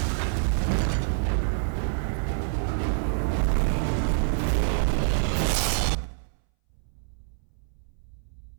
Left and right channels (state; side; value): silent; left; 60 dB below the other